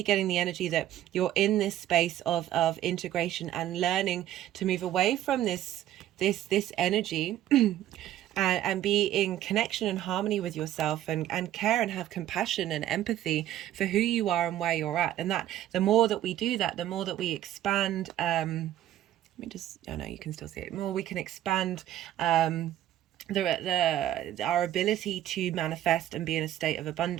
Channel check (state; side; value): quieter; left; 12.7 dB